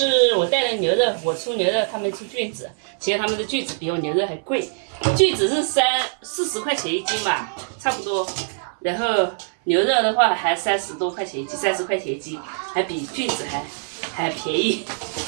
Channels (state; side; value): silent; left; 60 dB below the other